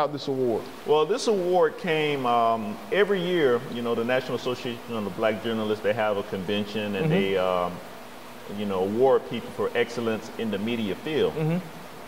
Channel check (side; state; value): both; identical; correlation 1.00